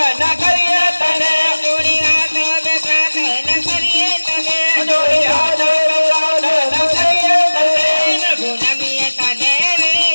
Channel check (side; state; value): both; inverted; correlation -1.00